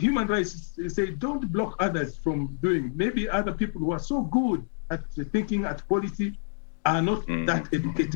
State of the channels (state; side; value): silent; right; digital silence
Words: rights say don't block others from doing. Maybe other people who are so good at thinking, at policy, are not that